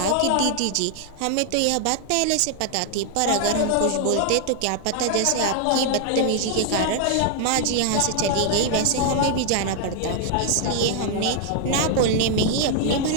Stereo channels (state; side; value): different; both; correlation 0.00